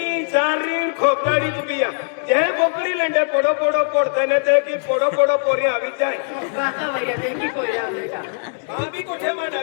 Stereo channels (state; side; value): silent; right; digital silence